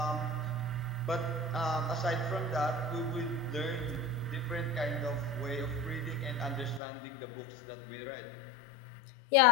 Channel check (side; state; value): right; drops out; at 6.8 s